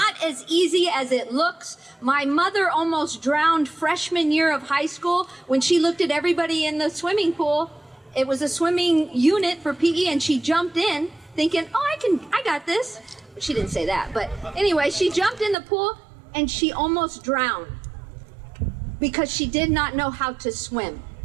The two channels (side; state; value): left; drops out; at 15.6 s